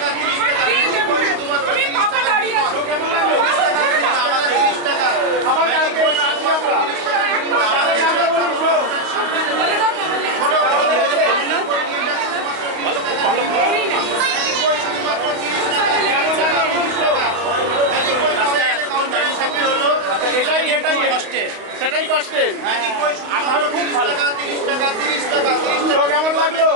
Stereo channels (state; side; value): late; left; 32 ms